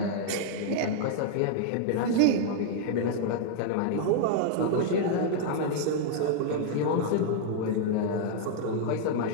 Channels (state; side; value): different; both; correlation -0.01